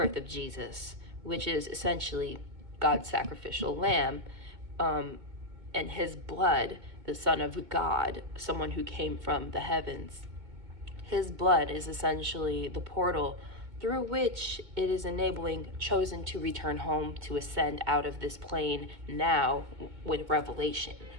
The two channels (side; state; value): left; late; 2.1 ms